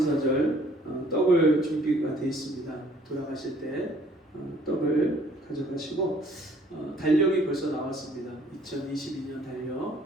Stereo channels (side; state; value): both; normal; correlation 0.59